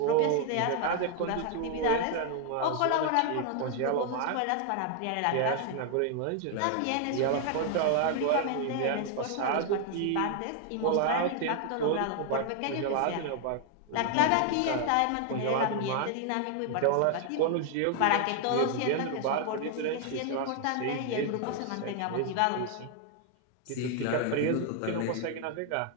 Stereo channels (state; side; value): different; both; correlation 0.00